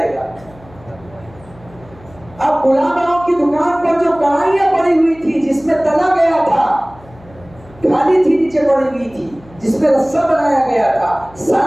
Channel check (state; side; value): noise; left; hum, 23 dB below the sound